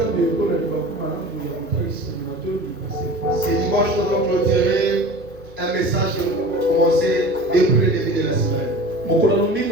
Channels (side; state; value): both; normal; correlation 0.38